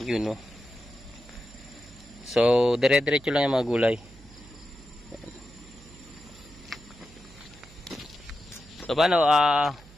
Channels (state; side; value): noise; right; hum, 22 dB below the sound